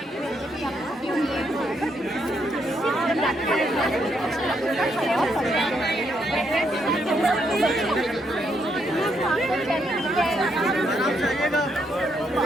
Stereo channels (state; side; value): normal; both; correlation 0.76